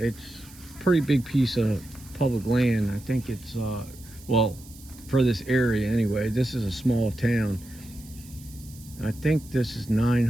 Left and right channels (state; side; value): noise; right; hiss, 21 dB below the sound